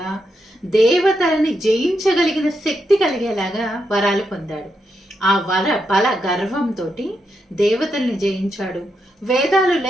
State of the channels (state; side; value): normal; both; correlation 0.83